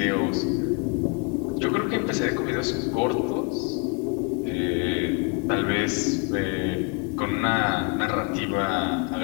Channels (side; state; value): right; quieter; 33.0 dB